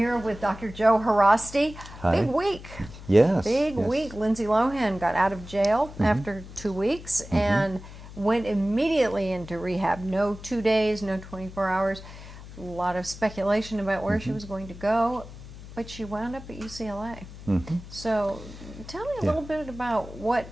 with Dr. Joe Haraszti. Hi. Big week. Yes. Big week. Lindsay Lohan got out of jail after 2 weeks and went immediately into rehab. No 2 days, no 24 hours. A lot of speculation about where she was going to go, but she wound up at UCLA. So tell me a little bit about what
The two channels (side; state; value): left; noise; hum, 15 dB below the sound